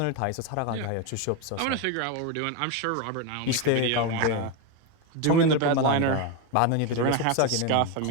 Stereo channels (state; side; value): different; both; correlation 0.02